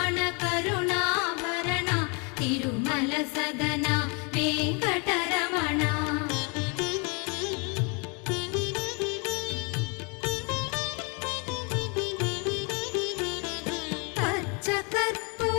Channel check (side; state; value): right; quieter; 33.2 dB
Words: కరుణాభరణ తిరుమల సదన వెంకటరమణ. పచ్చ